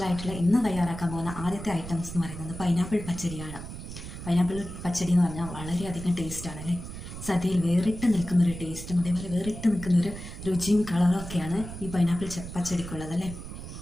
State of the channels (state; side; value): noise; right; rumble, 10 dB below the sound